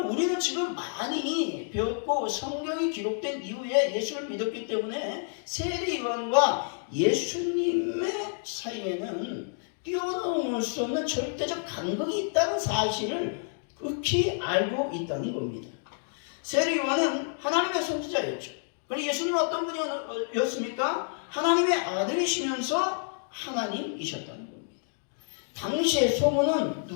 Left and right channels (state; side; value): silent; right; 59 dB below the other